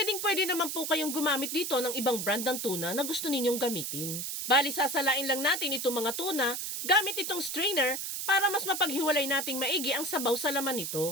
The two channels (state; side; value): noise; right; hiss, 4 dB below the sound